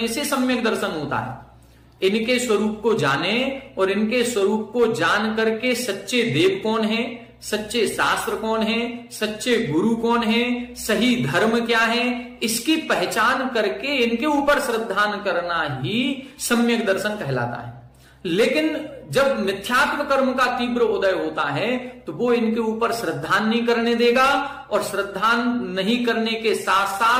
से सम्यक दर्शन होता है। इनके स्वरूप को जाने और इनके स्वरूप को जान करके सच्चे देव कौन है, सच्चे शास्त्र कौन है, सच्चे गुरु कौन है, सही धर्म क्या है, इसकी पहचान करके इनके ऊपर श्रद्धान करना ही सम्यक दर्शन कहलाता है। लेकिन जब मिथ्यात्व कर्म का तीव्र उदय होता है तो वो इनके ऊपर श्रद्धान नहीं करने देगा, और श्रद्धान नहीं करने के साथ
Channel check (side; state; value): both; identical; correlation 1.00